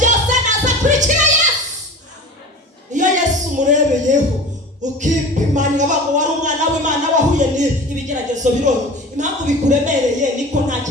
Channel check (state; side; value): normal; both; correlation 0.36